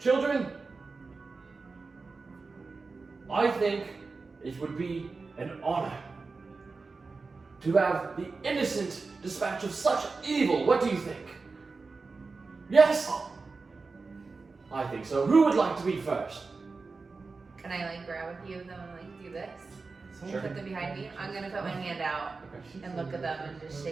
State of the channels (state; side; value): quieter; left; 4.1 dB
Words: I think it would be an honor to have the innocent dispatch of such evil. What do you think? Yes? I think so. Who would like to be first? Can I like grab a few of them and like do this? Sure. Put them behind me. I'm gonna put my hand out and look at them and just